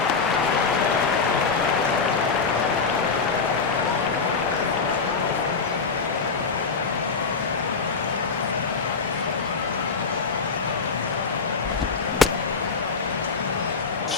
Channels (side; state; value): right; quieter; 5.0 dB